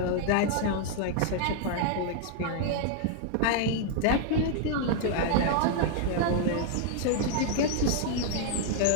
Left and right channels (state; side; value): different; both; correlation 0.00